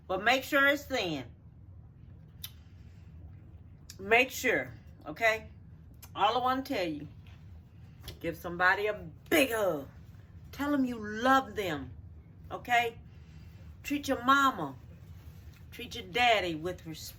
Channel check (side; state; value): both; identical; correlation 1.00